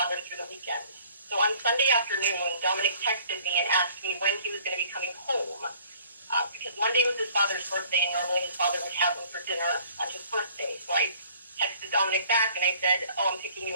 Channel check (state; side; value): inverted; both; correlation -0.55